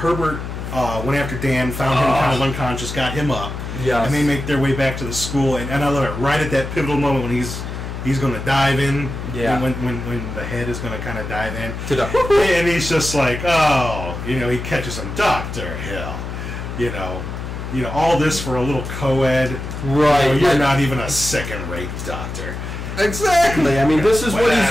went after Dan, found him kind of unconscious, got him up. Yes. And they make their way back to the school. And I love it. Right at that pivotal moment when he's going to dive in. Yeah. When the head is going to kind of dive in. And he's just like, he catches him, Dr. Hill. All this for a little co-ed. Right. You're not even a second-rate doctor. Exactly. I mean, this is what he's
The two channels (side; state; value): left; noise; hum, 7 dB below the sound